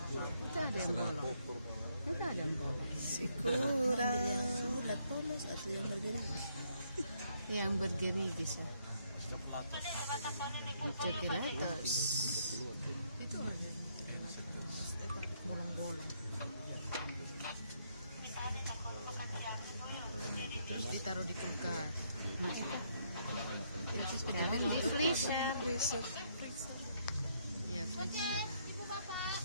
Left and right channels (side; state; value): both; inverted; correlation -0.72